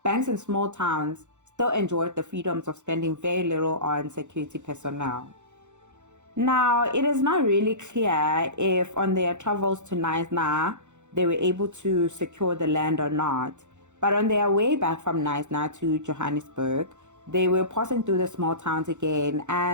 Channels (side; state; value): left; late; 0.84 ms